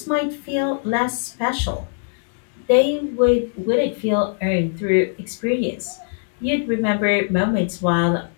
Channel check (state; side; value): silent; right; digital silence